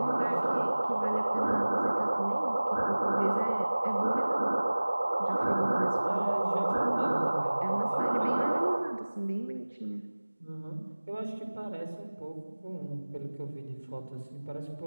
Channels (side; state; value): both; inverted; correlation -1.00